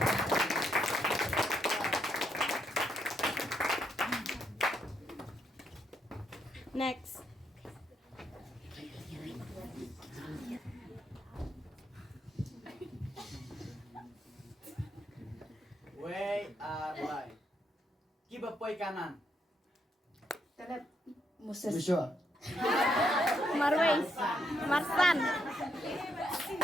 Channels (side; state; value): both; normal; correlation 0.77